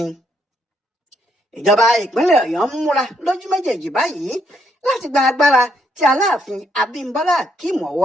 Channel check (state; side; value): normal; both; correlation 0.73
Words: ìjọba ìpínlẹ̀ ọ̀yọ́ ń múra lójú méjèèjì báyìí láti gba agbára tí aláàfin abímbọ́lá akeem